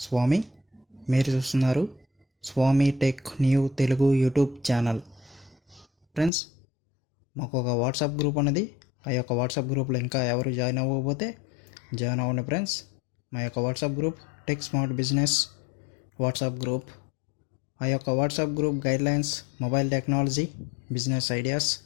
స్వామి. మీరు చూస్తున్నారు Swami tech new Telugu YouTube channel. Friends, మాకు ఒక వాట్సాప్ గ్రూప్ అనేది, ఆ యొక్క వాట్సాప్ గ్రూప్లో ఇంకా ఎవరు జాయిన్ అవ్వకపోతే జాయిన్ అవ్వండి ఫ్రెండ్స్. మా యొక్క WhatsApp group tech smart business WhatsApp group. ఆ యొక్క WhatsApp group guidelines mobile technology, business ideas,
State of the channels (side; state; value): right; drops out; at 6.3 s